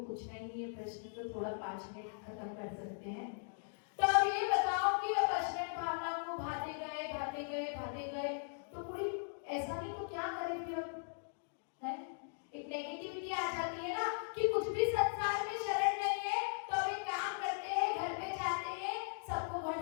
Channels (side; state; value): right; silent; digital silence